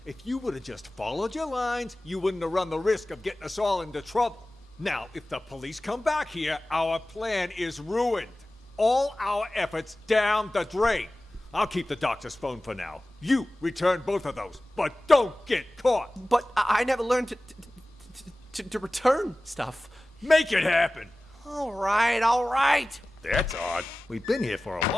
If you would have just followed your lines, you wouldn't have run the risk of getting us all into trouble. Now, if the police come back here, our plan is ruined. All our efforts down the drain. I'll keep the doctor's phone for now. You return both of those, but don't get caught. But I never learned to return stuff. Make it happen. All right. That's odd. We've been here for a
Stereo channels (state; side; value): normal; both; correlation 0.97